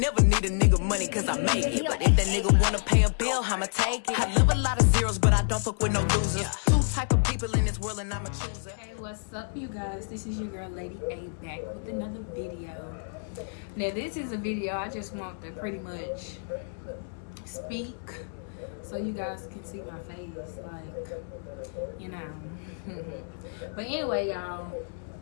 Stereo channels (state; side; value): silent; right; digital silence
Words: never need a nigga money cause I make it. But if that nigga wanna pay a bill, I'ma take it. I live a lot of zeros, but I don't fuck with no losers. Two type of people in this world and I'm a chooser. Hey, what's up, you guys? This is your girl, Lady A, back with another video. Now, this is a video I just want to pretty much speak so you guys can see my face, like, you know. But anyway, y'all,